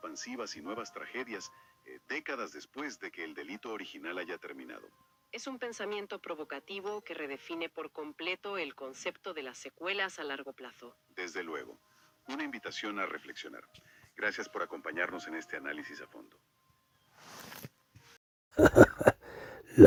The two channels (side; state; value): both; identical; correlation 1.00